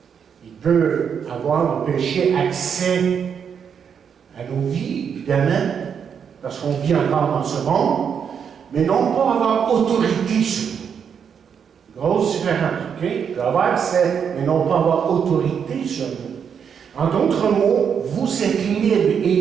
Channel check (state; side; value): quieter; left; 7.3 dB